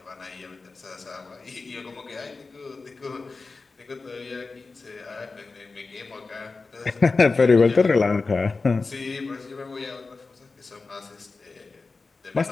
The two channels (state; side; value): quieter; right; 4.0 dB